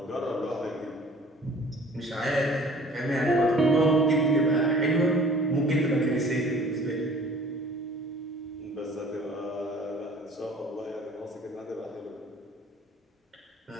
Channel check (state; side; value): normal; both; correlation 0.50